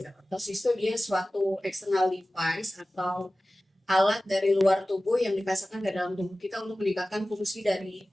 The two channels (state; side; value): normal; both; correlation 0.96